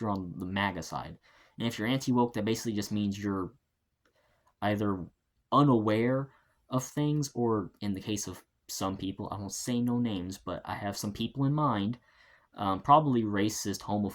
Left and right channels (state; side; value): identical; both; correlation 1.00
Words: you're on the MAGA side. And if you're anti-woke, that basically just means you're either unaware of things, or in the case of some people, I won't say no names, but I have some people in mind, probably racist,